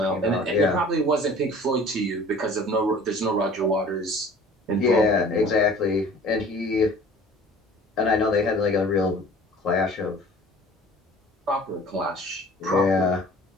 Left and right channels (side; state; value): both; normal; correlation 0.47